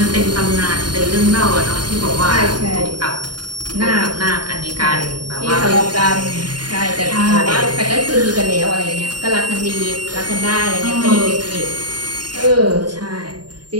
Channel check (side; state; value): left; late; 0.70 ms